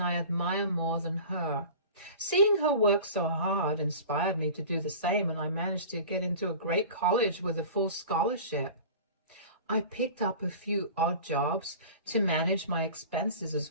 I admire more than her. Seeing her work so hard inspired me to do the same, and I managed to get into a great college with a full scholarship. I picked up a few odd jobs to manage my expenses as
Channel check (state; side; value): inverted; both; correlation -0.38